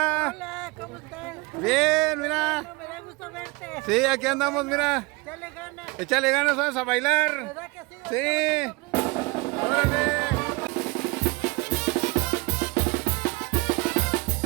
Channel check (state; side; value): quieter; left; 26.0 dB